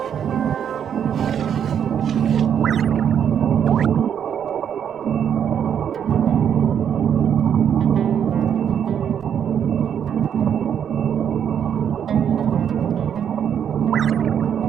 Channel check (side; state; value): left; quieter; 8.6 dB